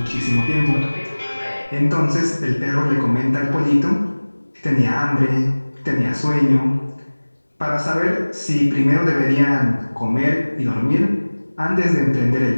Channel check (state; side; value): inverted; both; correlation -1.00